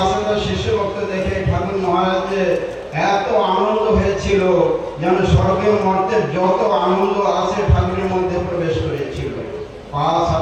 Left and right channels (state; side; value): identical; both; correlation 1.00